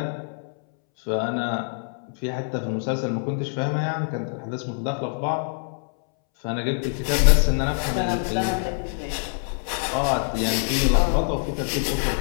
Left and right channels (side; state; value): right; silent; 62 dB below the other